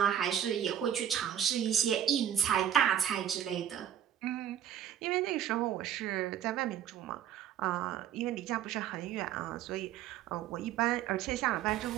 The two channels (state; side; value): quieter; left; 10.1 dB